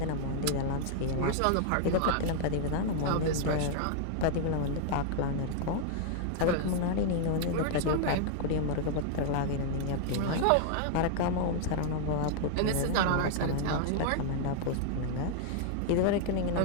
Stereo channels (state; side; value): different; both; correlation 0.00